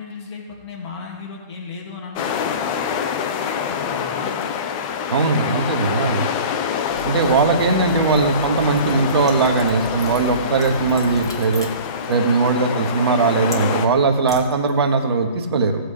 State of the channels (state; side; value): inverted; both; correlation -0.40